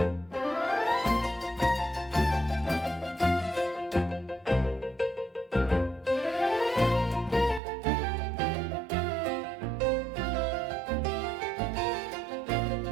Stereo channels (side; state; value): left; drops out; at 7.6 s